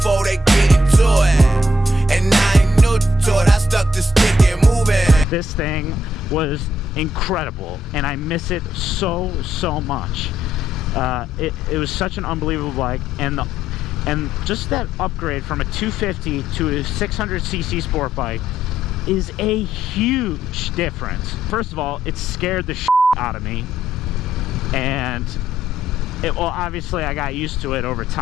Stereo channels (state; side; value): normal; both; correlation 0.72